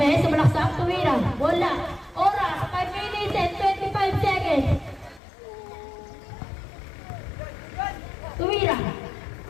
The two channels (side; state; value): right; drops out; at 5.2 s